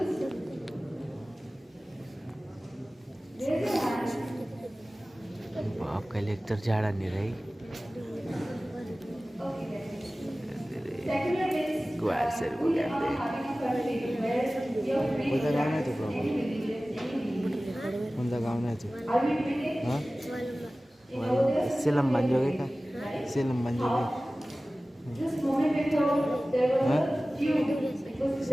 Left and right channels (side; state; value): both; normal; correlation 0.97